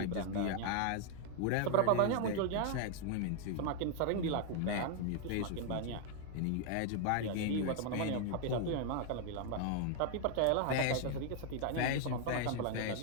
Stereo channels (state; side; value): different; both; correlation 0.00